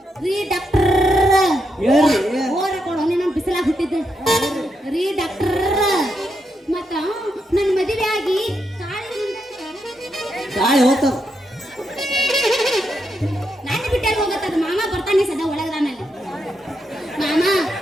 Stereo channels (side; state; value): both; normal; correlation 0.82